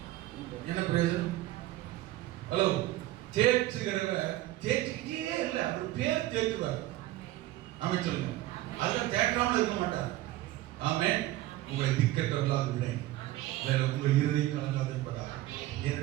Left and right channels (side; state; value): left; quieter; 16.1 dB